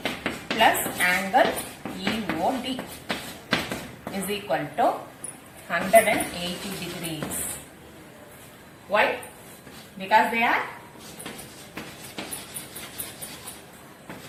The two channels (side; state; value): both; identical; correlation 1.00